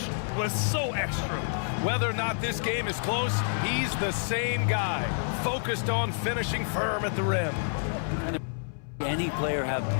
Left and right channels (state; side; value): silent; right; 59 dB below the other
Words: was so extra. Whether or not this game is close, he's the same guy. Focused on finishing firm at the rim. Any player have